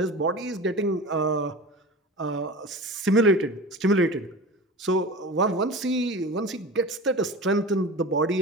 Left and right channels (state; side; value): normal; both; correlation 0.33